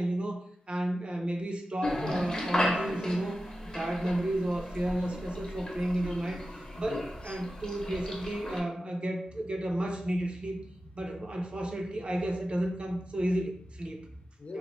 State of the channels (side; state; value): both; normal; correlation 0.93